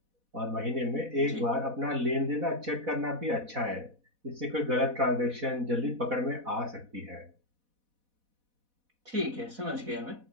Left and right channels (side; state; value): left; late; 4.1 ms